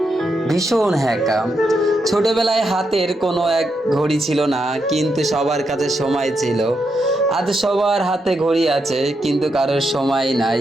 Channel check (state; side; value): normal; both; correlation 0.82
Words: ভীষণ হ্যাকা। ছোটবেলায় হাতের কোনো এক ঘড়ি ছিল না, কিন্তু সবার কাছে সময় ছিল। আজ সবার হাতে ঘড়ি আছে, কিন্তু কারোর সময় নাই।